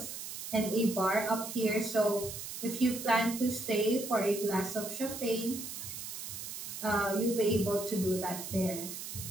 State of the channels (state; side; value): noise; right; hiss, 8 dB below the sound